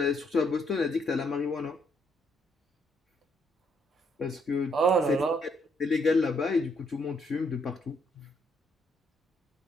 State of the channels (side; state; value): both; normal; correlation 0.72